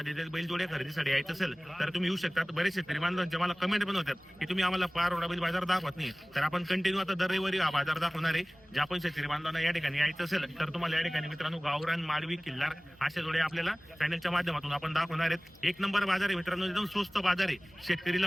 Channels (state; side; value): noise; left; hum, 30 dB below the sound